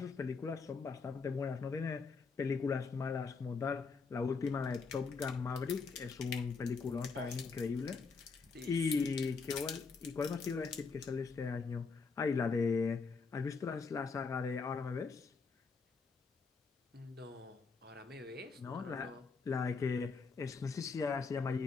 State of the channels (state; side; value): quieter; right; 4.8 dB